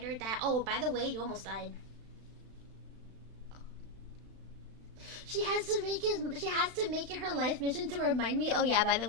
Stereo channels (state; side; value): late; left; 36 ms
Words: that, "Oh, by the way, you almost died." She has to make it her life mission to remind me, "Oh yeah, by the